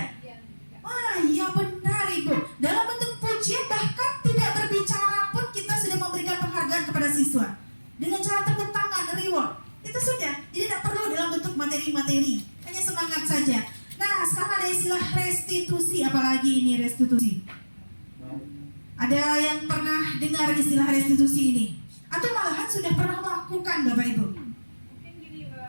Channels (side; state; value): both; inverted; correlation -1.00